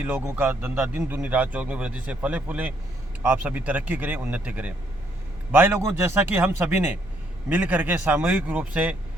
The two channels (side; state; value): both; normal; correlation 0.70